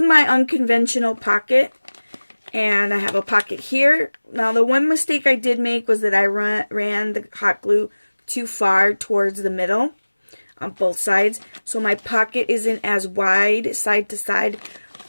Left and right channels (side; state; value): both; inverted; correlation -1.00